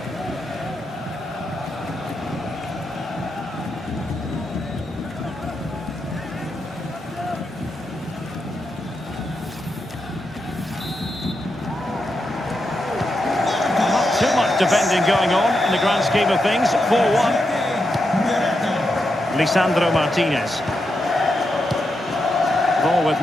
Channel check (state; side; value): normal; both; correlation 0.85